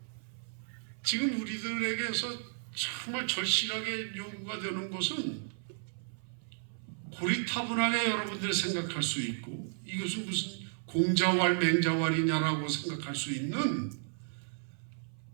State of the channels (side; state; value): left; silent; 55 dB below the other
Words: 지금 우리들에게서 정말 절실하게 요구가 되는 것은 고리타분하게 여러분들이 생각할 수 있고 이것은 무슨 공자왈 맹자왈이냐라고 생각할 수 있는